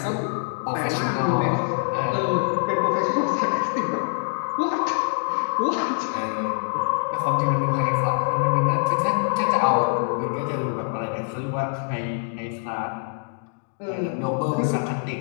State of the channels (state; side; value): silent; right; 56 dB below the other